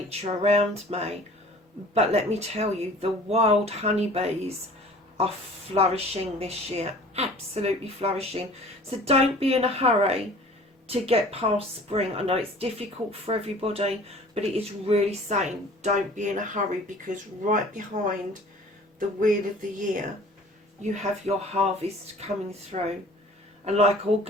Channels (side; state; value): both; normal; correlation 0.47